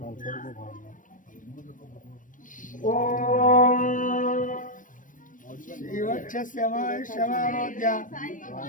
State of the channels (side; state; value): right; late; 0.38 ms